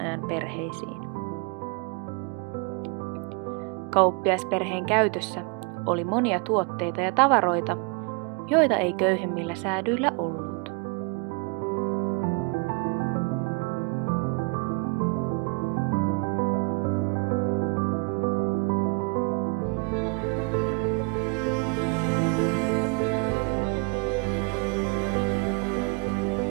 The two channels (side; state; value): left; quieter; 32.7 dB